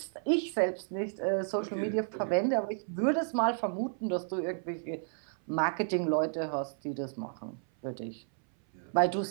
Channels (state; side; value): silent; left; 56 dB below the other